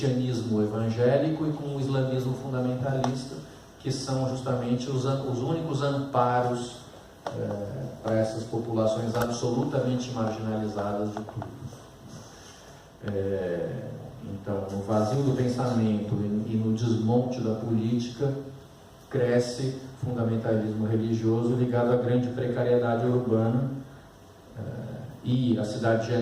evangélico e com o islamismo fundamentalista, que são justamente os únicos amparos para essas populações absolutamente marginalizadas de tudo. Então, no vazio do pensamento e no desmonte da política, cresce fundamentalismo religioso ligado à grande precariedade urbana, e a cidade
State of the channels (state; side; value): identical; both; correlation 1.00